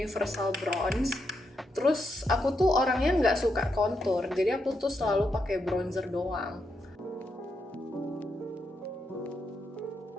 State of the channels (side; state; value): both; normal; correlation 0.82